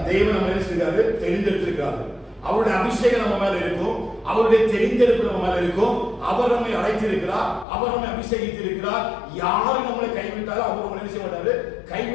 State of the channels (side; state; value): right; drops out; at 7.7 s